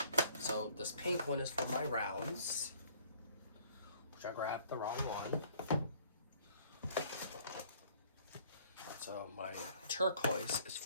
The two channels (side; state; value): both; inverted; correlation -0.59